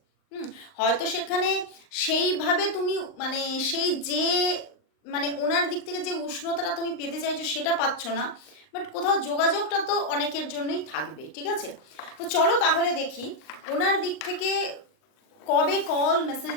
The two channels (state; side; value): late; right; 39 ms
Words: হয়তো সেখানে সেইভাবে তুমি মানে সেই যে মানে ওনার দিক থেকে যে উষ্ণতাটা তুমি পেতে চাইছো সেটা পাচ্ছ না, বাট কোথাও যোগাযোগটা তো অনেকের জন্যই থাকবে, ঠিক আছে? তো চলো তাহলে দেখি ওনার দিক থেকে কবে কল